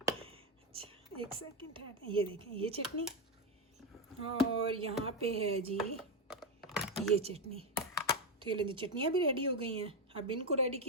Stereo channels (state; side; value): normal; both; correlation 0.08